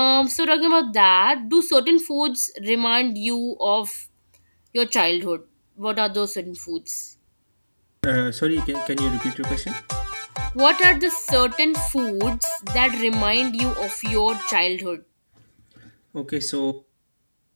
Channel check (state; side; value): inverted; both; correlation -1.00